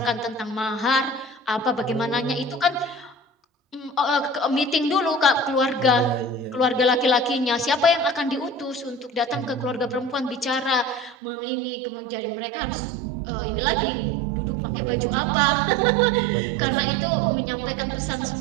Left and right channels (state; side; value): drops out; left; at 11.2 s